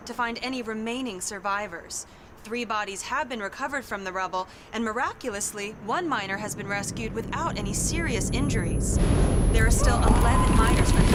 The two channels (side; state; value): both; identical; correlation 1.00